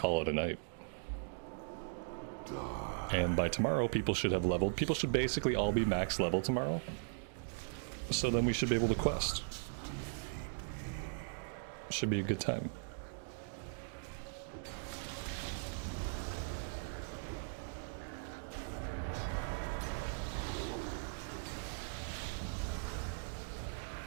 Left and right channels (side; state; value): left; silent; digital silence